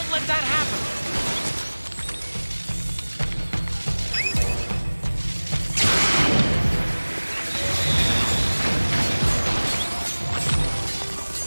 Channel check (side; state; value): both; inverted; correlation -1.00